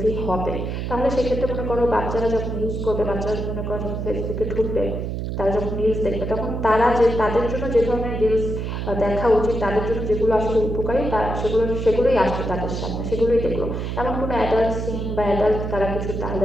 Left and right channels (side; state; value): right; noise; hum, 3 dB below the sound